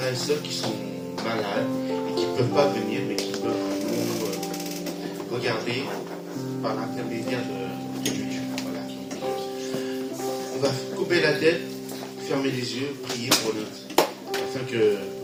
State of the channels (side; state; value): both; identical; correlation 1.00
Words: et sœurs qui sont malades et qui ne peuvent pas venir, mais qui peuvent nous regarder par l'intermédiaire de YouTube. Voilà. On va couper la tête, fermer les yeux, prier pour notre, afin que